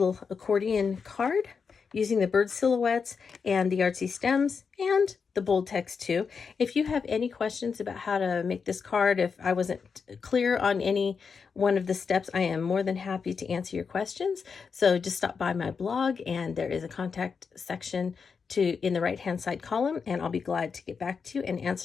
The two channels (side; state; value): right; quieter; 5.7 dB